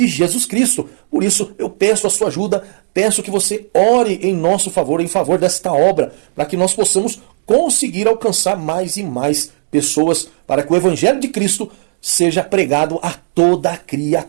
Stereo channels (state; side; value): silent; left; digital silence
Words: Jesus Cristo. Por isso eu peço a sua ajuda, peço que você ore em nosso favor, em favor desta obra, para que nós possamos conseguir alcançar mais e mais pessoas, para que o Evangelho de Cristo seja pregado a toda